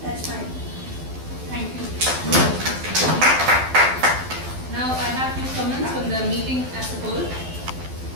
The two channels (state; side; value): late; left; 12 ms